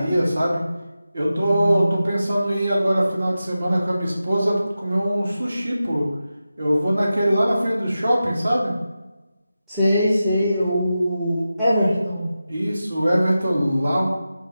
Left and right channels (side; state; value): both; inverted; correlation -0.92